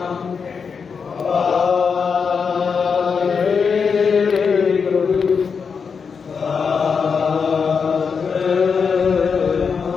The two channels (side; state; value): right; quieter; 5.8 dB